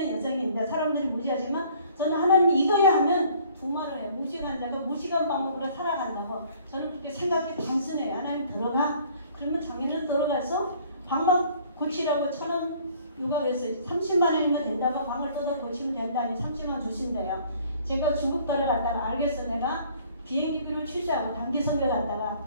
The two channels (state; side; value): inverted; both; correlation -0.56